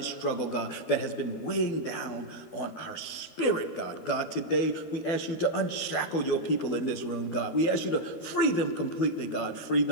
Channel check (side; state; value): right; late; 12 ms